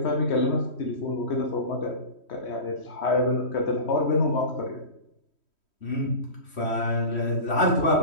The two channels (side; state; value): right; late; 3.1 ms